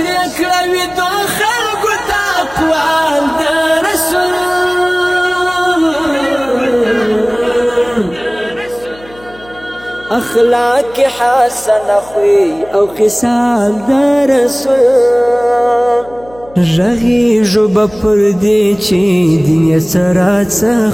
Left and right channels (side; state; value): left; noise; hum, 23 dB below the sound